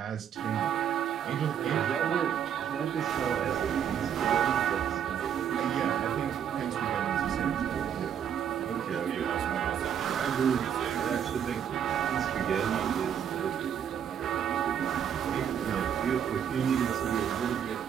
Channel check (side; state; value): left; quieter; 8.7 dB